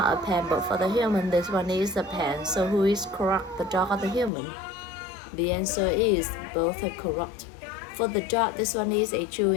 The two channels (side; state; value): right; drops out; at 4.3 s